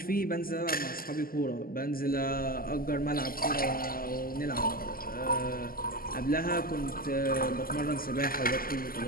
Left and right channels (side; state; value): right; late; 0.42 ms